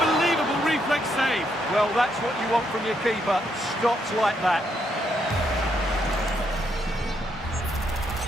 reflex save. Well, that's what you want from your keeper. Stops like that.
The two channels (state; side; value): normal; both; correlation 0.76